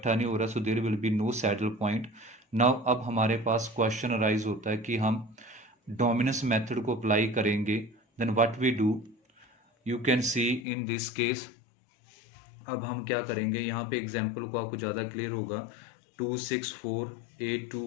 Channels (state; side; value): drops out; right; at 10.7 s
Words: नहीं हो रहा, so there will be no saddle point. Now अब हमारे पास क्वेश्चन अराइज होता है कि हम डोमिनेंस मेथड को अप्लाई करेंगे, then what we do, you can see in this case. अब हम क्या करेंगे, यहाँ पे एग्जाम्पल को आपको ज़्यादा क्लियर होगा। 2 6 4 8 2